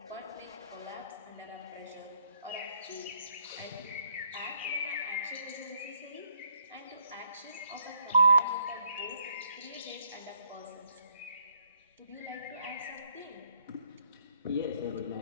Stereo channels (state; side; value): inverted; both; correlation -0.68